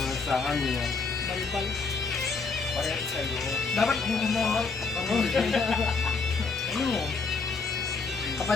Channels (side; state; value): right; quieter; 4.5 dB